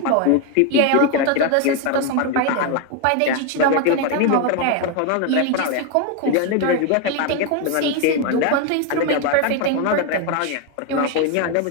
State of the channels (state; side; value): different; both; correlation 0.01